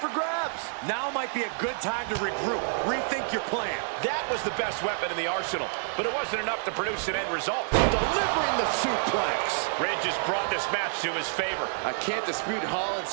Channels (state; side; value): silent; left; 58 dB below the other